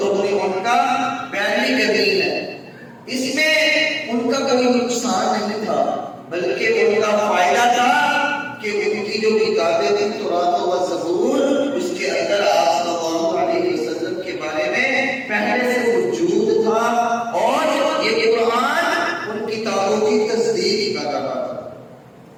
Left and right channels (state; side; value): identical; both; correlation 1.00